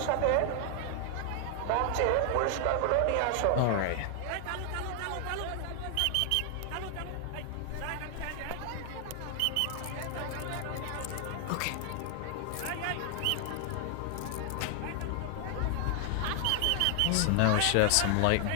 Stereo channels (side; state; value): both; different; correlation 0.00